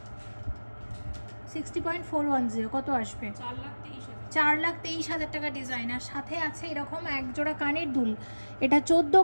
60.410। কত আসবে? 4,23,000 টাকা ডিজাইন। আর সাথে আছে এরকম এক জোড়া কানের দুল। এটা 14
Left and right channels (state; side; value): inverted; both; correlation -1.00